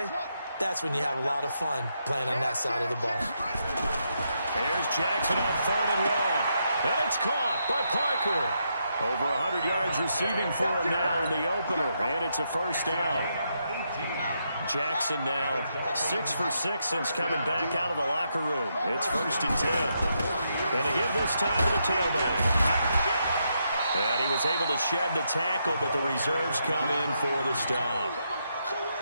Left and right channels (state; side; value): inverted; both; correlation -0.80